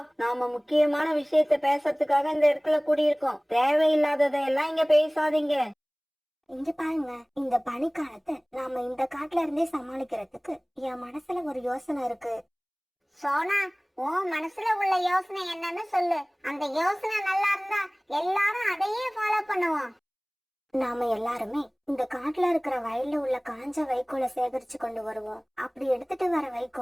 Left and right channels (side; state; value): both; identical; correlation 1.00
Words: நாம முக்கியமான விஷயத்த பேசுறதுக்காக இந்த இடத்துல கூடியிருக்கோம். தேவையில்லாததையெல்லாம் இங்க பேசாதீங்க. இங்க பாருங்க, இந்த பனிக்காலத்தை நாம இந்த காட்டுல இருந்தே சமாளிக்கிறதுக்கு என் மனசுல ஒரு யோசனை இருக்கு. சோனா, உன் மனசுல உள்ள யோசனை என்னன்னு சொல்லு. அந்த யோசனை நல்லா இருந்தா எல்லாரும் அதையே ஃபாலோ பண்ணுவோம். நாம எல்லாருமே இந்த காட்டுல இருக்கிற வயல்ல உள்ள காஞ்ச வைக்கோலை சேகரிச்சு கொண்டு வருவோம். அப்படி எடுத்துட்டு வர